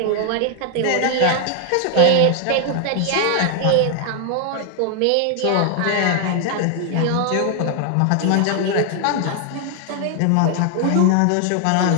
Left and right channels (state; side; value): different; both; correlation 0.00